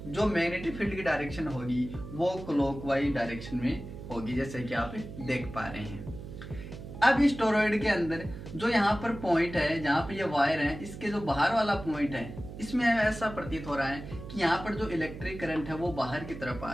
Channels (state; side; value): noise; right; hum, 11 dB below the sound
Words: जो मैग्नेटिक फील्ड की डायरेक्शन होगी वो क्लॉकवाइज डायरेक्शन में होगी, जैसे कि आप देख पा रहे हैं। अब इस टोरॉइड के अंदर जो यहाँ पर पॉइंट है, जहाँ पर ये वायर है, इसके जो बाहर वाला पॉइंट है, इसमें ऐसा प्रतीत हो रहा है कि यहाँ पर जो इलेक्ट्रिक करंट है वो बाहर की तरफ आ